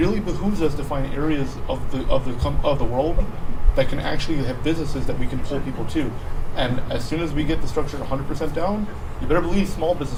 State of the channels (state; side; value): identical; both; correlation 1.00